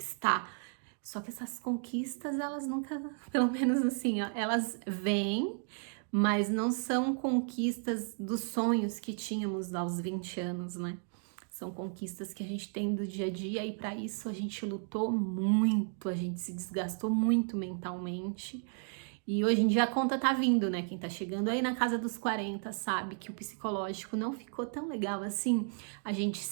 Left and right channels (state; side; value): silent; left; 55 dB below the other